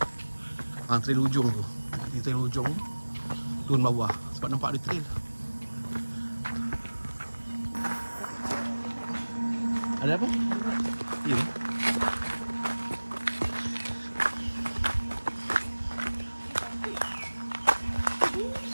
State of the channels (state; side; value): inverted; both; correlation -1.00